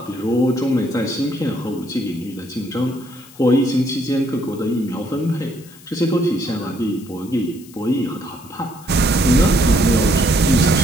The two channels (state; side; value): noise; left; hiss, 22 dB below the sound